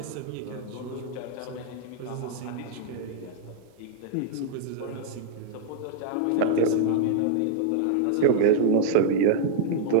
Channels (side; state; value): both; different; correlation -0.01